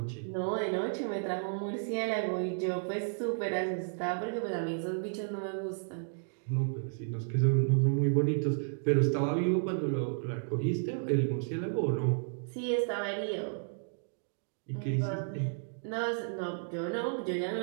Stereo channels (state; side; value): silent; left; digital silence